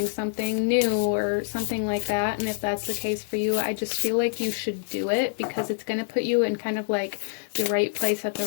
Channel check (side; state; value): right; silent; digital silence